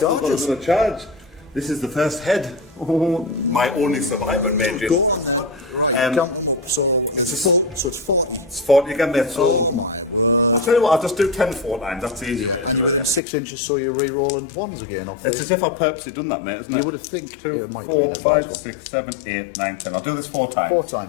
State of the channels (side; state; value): right; drops out; at 13.2 s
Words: got charges. another charge. This is the first head. Oh, my only survivor, mate. Go on there. Right, count them up. So it's 40. It's 40 again, mate. So Oh my word. I'll tell you what, I'll just do 10 4 times. That's easier. And you're within 6 inches, so you're re-rolling ones again. Off It's as if I purposely done that, mate, isn't it? You would have think 2, it might 4, be 5, that 6, 7, 8, 9, 10. I'll do this 4 times. 4